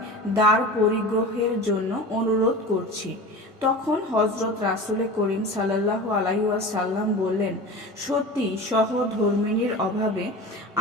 দ্বার পরিগ্রহের জন্য অনুরোধ করছি। তখন হজরত রাসূল করিম সাল্লাল্লাহু আলাইহি ওয়াসাল্লাম বললেন, সত্যি সহধর্মিণীর অভাবে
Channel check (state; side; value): normal; both; correlation 0.33